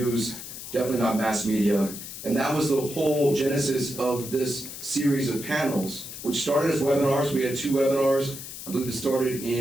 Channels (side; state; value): left; noise; hiss, 11 dB below the sound